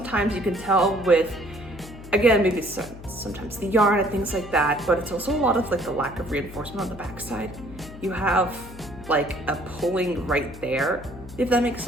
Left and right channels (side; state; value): left; noise; hum, 16 dB below the sound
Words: you can tell with, again, maybe sometimes the yarn and things like that, but it's also a lot of like the lack of reinforcement on the backside. You have like a pulling right there, if that makes